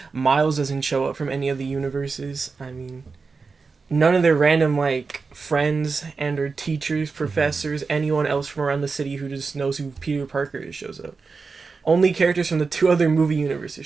Miles doesn't show up from any of the universes. I mean, none of their random, like, friends and or teachers, professors, anyone else from around the city who just knows who Peter Parker is shows up. Only characters from the two other movie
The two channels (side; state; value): left; quieter; 4.6 dB